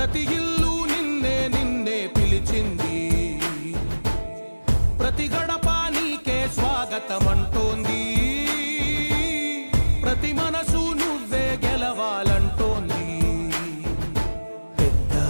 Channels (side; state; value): both; inverted; correlation -1.00